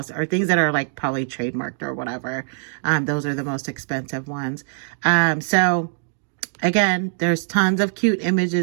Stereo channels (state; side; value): silent; left; digital silence